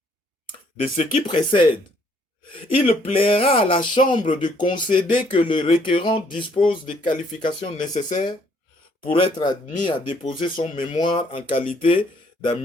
De ce qui précède, il plaira à la Chambre de concéder que le requérant dispose des qualifications nécessaires pour être admis à déposer son mémoire en qualité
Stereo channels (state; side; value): normal; both; correlation 0.65